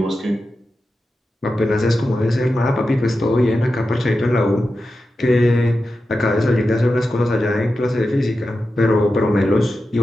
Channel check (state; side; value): normal; both; correlation 0.91